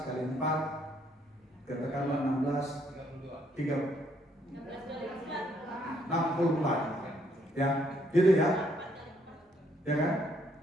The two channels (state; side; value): normal; both; correlation 0.70